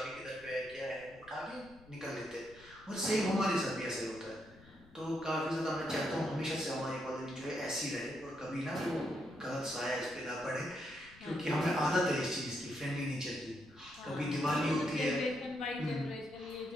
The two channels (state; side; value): noise; left; rumble, 24 dB below the sound